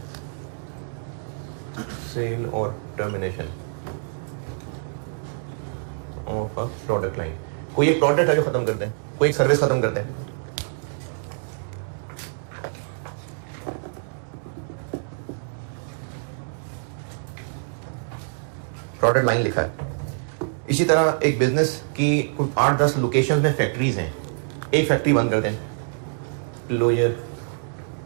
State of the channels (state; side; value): silent; left; 61 dB below the other